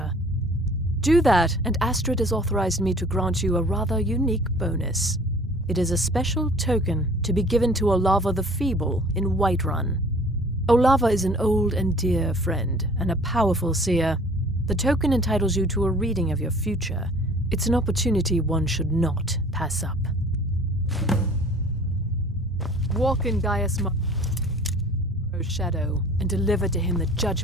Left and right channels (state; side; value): normal; both; correlation 0.49